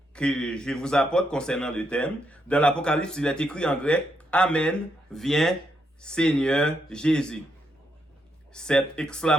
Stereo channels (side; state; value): both; normal; correlation 0.79